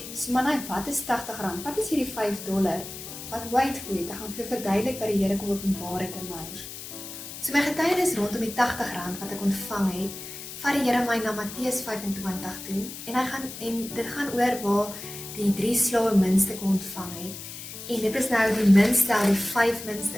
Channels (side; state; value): left; noise; hiss, 11 dB below the sound